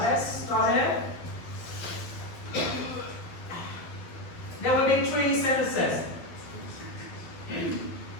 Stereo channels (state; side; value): late; right; 12 ms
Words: start it. There will be 3 sentences.